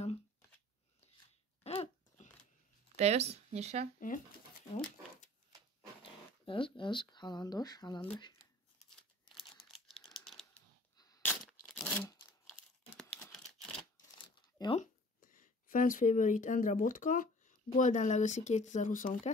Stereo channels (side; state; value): both; normal; correlation 0.49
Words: Te jössz? Nyissál. Igen. Jó. Ez, halandos. Jó. Fans Favorite Endre Botka, Golden Legacy